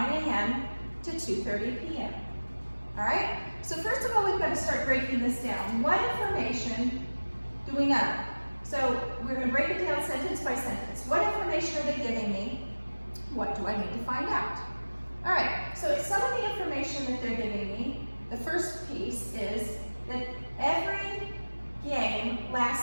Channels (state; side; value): inverted; both; correlation -1.00